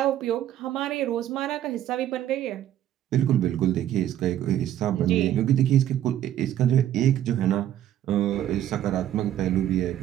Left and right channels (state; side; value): quieter; left; 11.7 dB